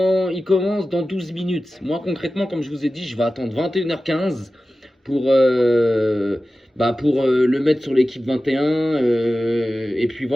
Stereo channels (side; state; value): both; normal; correlation 0.95